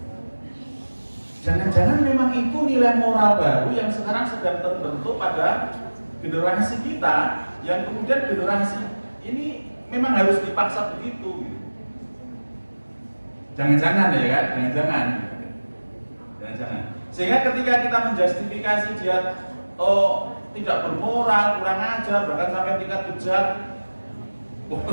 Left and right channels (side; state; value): both; inverted; correlation -1.00